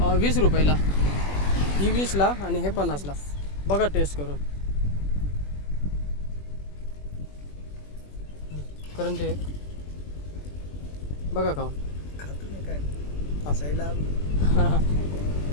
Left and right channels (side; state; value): right; late; 21 ms